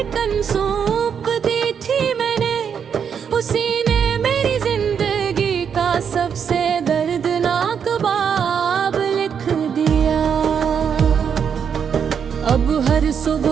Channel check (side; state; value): left; quieter; 7.3 dB